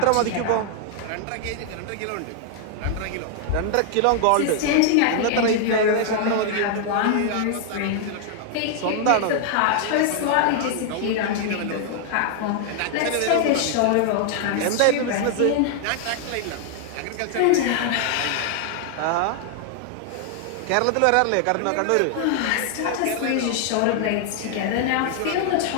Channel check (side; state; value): both; different; correlation 0.00